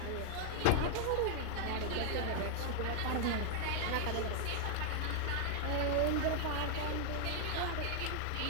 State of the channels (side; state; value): both; different; correlation 0.00